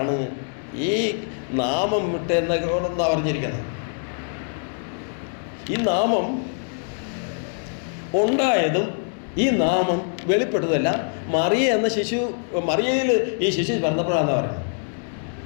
ഈ നാമം വിട്ടെന്നാണ് പറഞ്ഞിരിക്കുന്നത്. ഈ നാമം ഉണ്ടായതും ഈ നാമം വെളിപ്പെട്ടതല്ല മറിയ എന്ന മറിയയിൽ ഈ ശിശു പിറന്നപ്പോഴാണെന്ന് പറയുന്നത്.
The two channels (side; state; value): right; silent; 62 dB below the other